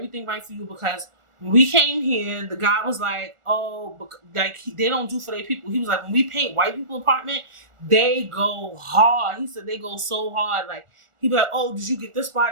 right for you because when we came here, the guy was like, oh, like they don't do for their people. He was like, when we paint white people apartment, they go hard. He said they go so hard. Like, he'd be like, oh, did you get this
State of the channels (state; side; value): late; left; 1.4 ms